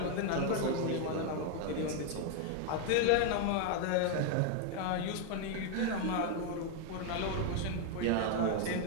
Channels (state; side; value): different; both; correlation 0.01